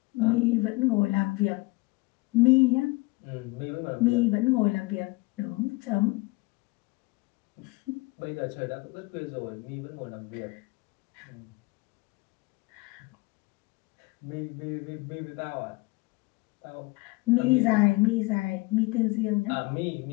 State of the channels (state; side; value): quieter; right; 23.9 dB